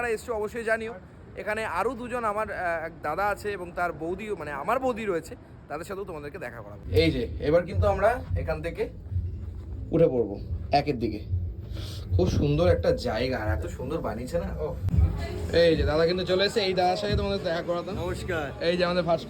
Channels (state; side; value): identical; both; correlation 1.00